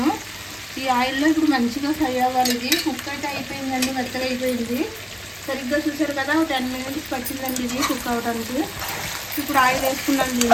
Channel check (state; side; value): identical; both; correlation 1.00